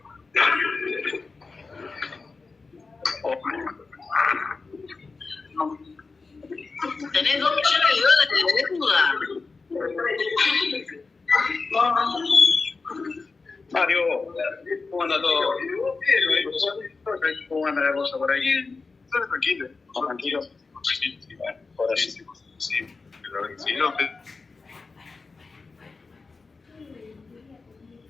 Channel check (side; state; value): right; quieter; 4.2 dB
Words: ¿Tenés 2 millones de dólares de deuda? Mario, ¿cómo anda todo? ¿Cómo anda la cosa por ahí? Tranquilo. Tranquilo. Sí, bueno, ahora sí. Sí, pero si no,